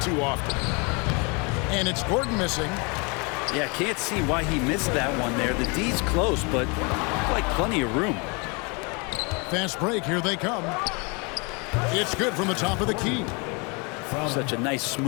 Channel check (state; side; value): quieter; right; 30.9 dB